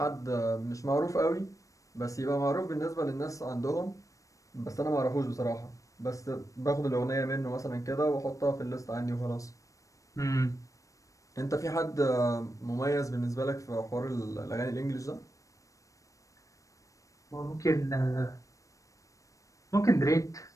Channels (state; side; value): late; right; 0.16 ms